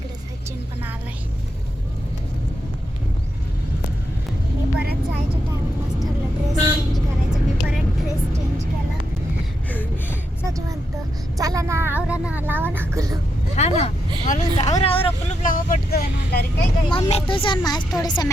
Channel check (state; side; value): normal; both; correlation 0.83